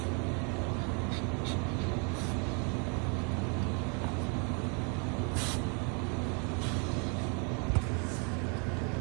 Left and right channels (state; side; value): quieter; left; 36.3 dB